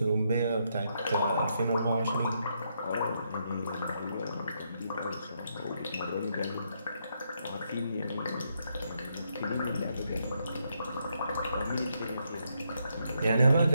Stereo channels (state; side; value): inverted; both; correlation -0.77